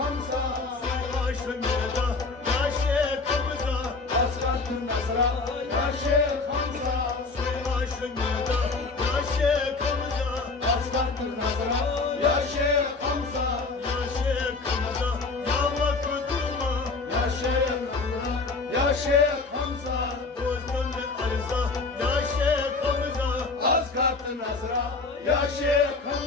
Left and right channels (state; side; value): quieter; right; 3.9 dB